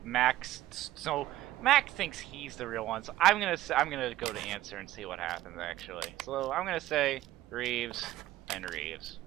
Mac thinks he's the real one, so I'm gonna go to answer and see what happens actually. So I'm gonna say Reeves and Reeves.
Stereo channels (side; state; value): left; quieter; 15.2 dB